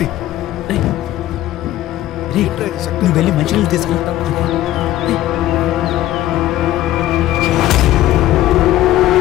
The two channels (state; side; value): quieter; right; 14.3 dB